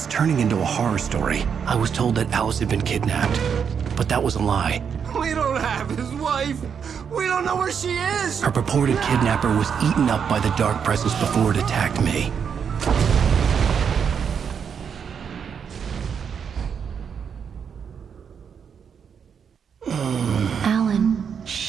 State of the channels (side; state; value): left; quieter; 7.1 dB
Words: turning into a horror story. I was told that Alice had been kidnapped, but that was a lie. We don't have his wife. We don't know where she is. Her purported kidnapper was eaten up by the dark presence before it attacked me. Alan,